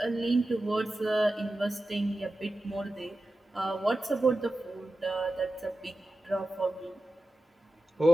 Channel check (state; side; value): normal; both; correlation 0.93